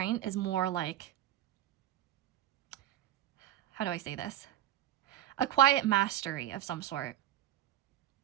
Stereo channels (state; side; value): quieter; left; 12.3 dB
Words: is more like, how do I say this? A quiet mastery of some sort.